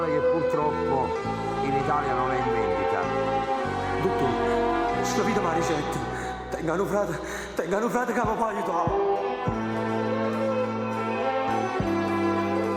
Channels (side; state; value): both; identical; correlation 1.00